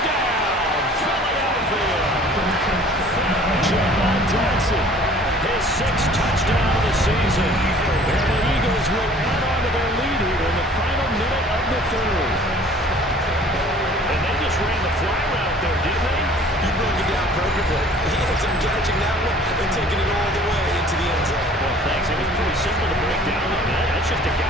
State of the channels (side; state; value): both; normal; correlation 0.51